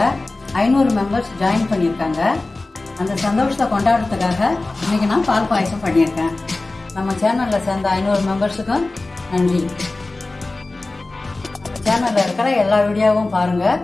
500 மெம்பர்ஸ் ஜாயின் பண்ணியிருக்காங்க. அந்த சந்தோஷத்தை கொண்டாடுறதுக்காக இன்னைக்கு நான் பால் பாயசம் பண்ணியிருக்கேன். நம்ம சேனல்ல சேர்ந்த 500 மெம்பர்ஸுக்கும் நன்றி. நம்ம சேனல்ல இருக்கிற எல்லா வீடியோவும் பாருங்க,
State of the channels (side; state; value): right; quieter; 3.1 dB